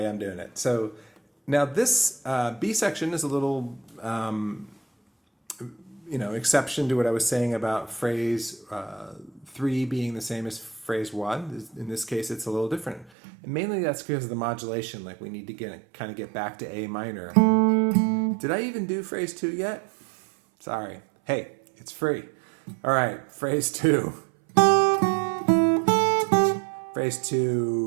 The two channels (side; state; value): left; drops out; at 13.1 s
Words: I'm doing it. So now this B section is a little exception to what I was saying about phrase 3 being the same as phrase 1. In this case, it's a little different. And mainly that's because of the modulation. Like we need to get back to A minor. Did I even do phrase 2 yet? Sorry. Hey, it's free. All right, phrase 2. Phrase